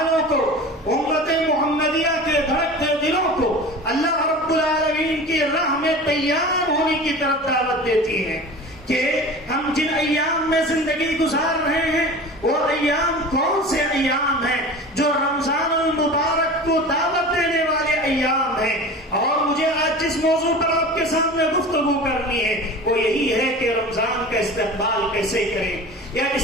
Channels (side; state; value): both; normal; correlation 0.36